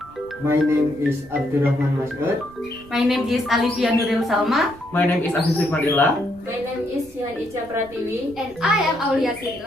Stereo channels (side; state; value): right; noise; rumble, 24 dB below the sound